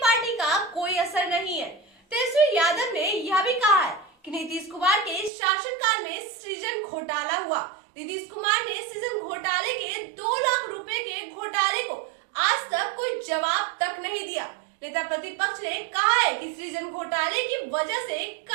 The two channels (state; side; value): drops out; left; at 5.3 s